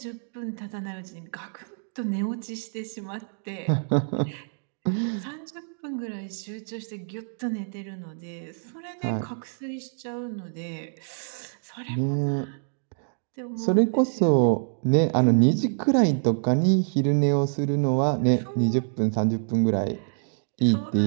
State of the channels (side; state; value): left; silent; digital silence